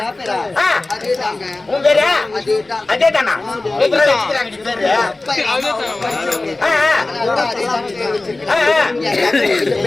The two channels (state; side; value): quieter; right; 3.1 dB